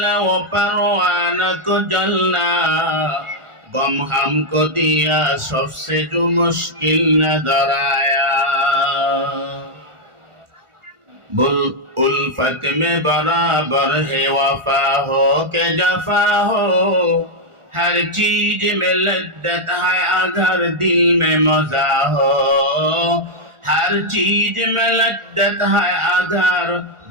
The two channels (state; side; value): late; left; 1.4 ms